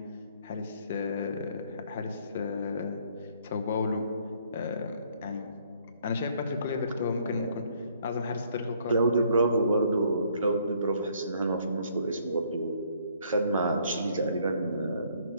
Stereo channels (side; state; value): both; inverted; correlation -0.64